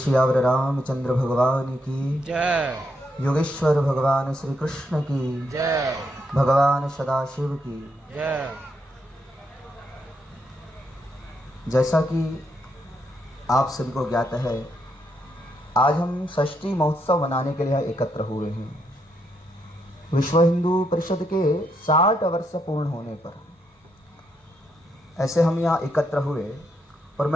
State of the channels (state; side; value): normal; both; correlation 0.78